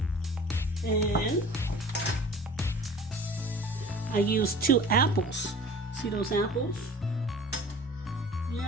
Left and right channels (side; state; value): both; normal; correlation 0.44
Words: And I use 2 apples. See those apples?